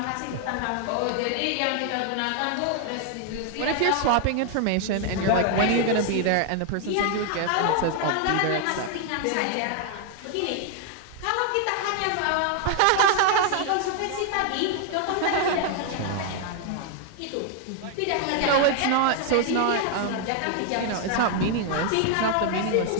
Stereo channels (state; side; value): different; both; correlation 0.00